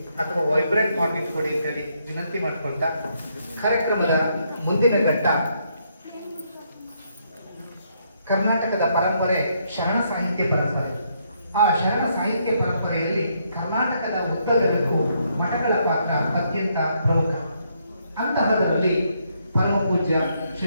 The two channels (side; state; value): both; inverted; correlation -0.74